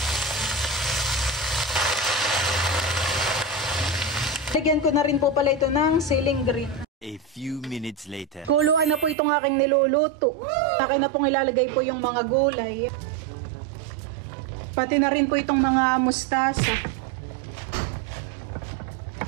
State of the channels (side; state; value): left; drops out; at 9.2 s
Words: Lagyan ko na rin po pala ito ng siling green. A few minutes later. Kuluan na po itong aking niluluto. Akin na pong ilalagay po yung mga gulay. Pati na rin po itong mga mustasa.